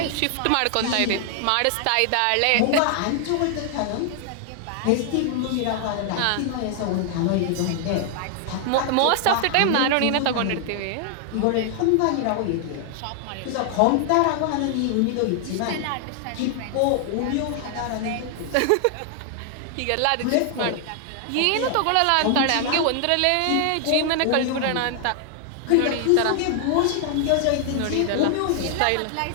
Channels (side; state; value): both; different; correlation 0.00